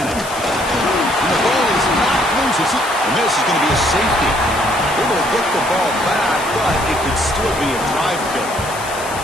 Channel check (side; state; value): left; noise; hiss, 12 dB below the sound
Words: And the ball is not loose. And this is going to be a safety. Able to get the ball back, but it could still be a drive killer.